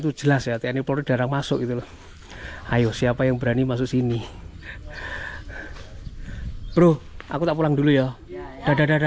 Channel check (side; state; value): both; identical; correlation 1.00